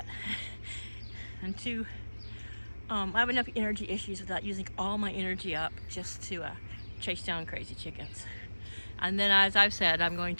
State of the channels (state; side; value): inverted; both; correlation -1.00